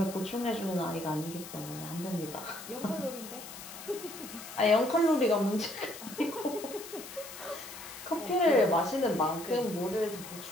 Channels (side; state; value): left; noise; hiss, 13 dB below the sound